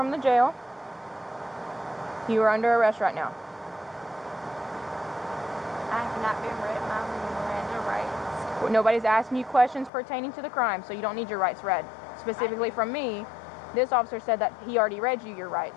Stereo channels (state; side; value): drops out; right; at 9.9 s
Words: the jail. You are under arrest right now. I have not been read my Miranda rights. Nobody's asking you questions pertaining to the crime, so you don't need your rights read. Specifically from me, this officer said that he already read you your